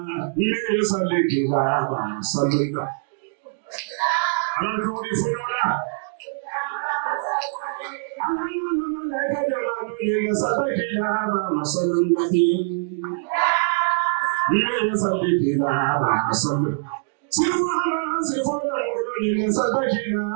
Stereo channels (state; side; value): silent; left; digital silence